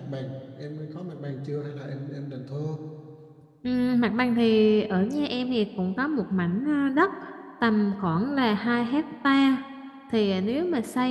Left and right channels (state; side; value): identical; both; correlation 1.00